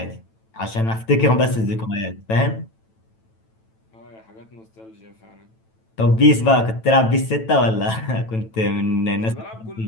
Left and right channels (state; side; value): late; right; 9.1 ms